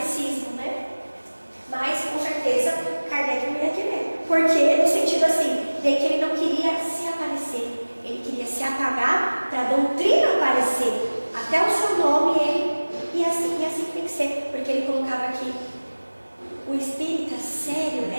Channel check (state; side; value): inverted; both; correlation -1.00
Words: né? Mas, com certeza, Kardec não ia querer. Porque, no sentido assim, de que ele não queria se aparecer, ele queria se apagar para a doutrina aparecer. Até o seu nome, ele, e assim tem que ser, porque ele colocava aqui, o espírita sério